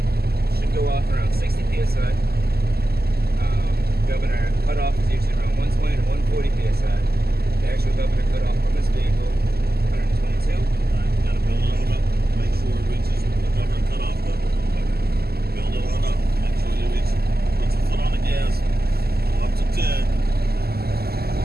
should go off around 60 psi. Governor cutoff is usually around 120 to 140 psi. The actual governor cutoff on this vehicle, 122. All right, you gotta build it on up. Make sure it reaches the governor cutoff level. Build it on up. Make sure you reach. Put your foot on the gas. Go up to 10.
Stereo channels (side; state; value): left; late; 0.46 ms